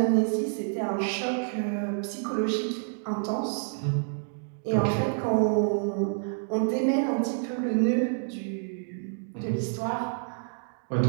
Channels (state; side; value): silent; left; digital silence